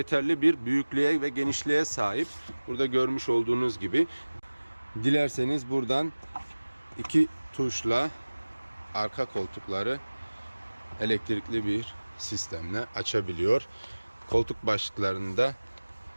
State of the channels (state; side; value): inverted; both; correlation -1.00